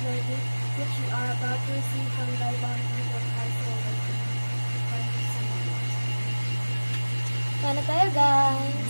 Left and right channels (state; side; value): inverted; both; correlation -1.00